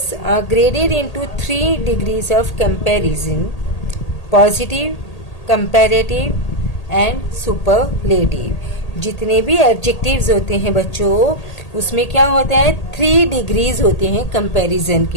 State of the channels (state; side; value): late; right; 1.8 ms